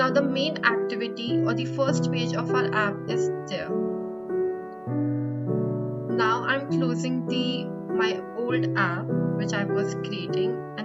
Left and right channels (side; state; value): both; identical; correlation 1.00